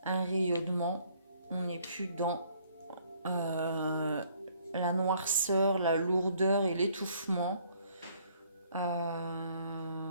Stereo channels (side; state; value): both; inverted; correlation -0.63